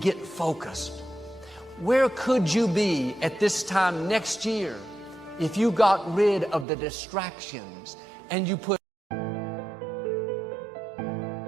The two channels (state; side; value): drops out; left; at 6.7 s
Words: get focused. Where could you be at this time next year if you got rid of the distractions and you put